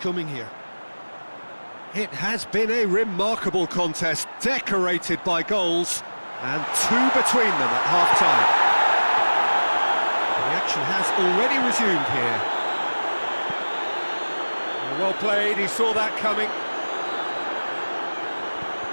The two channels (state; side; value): inverted; both; correlation -1.00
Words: here. It has been a remarkable contest, decorated by goals, and two between them at half-time. The action has already resumed here. Well played, he saw that coming.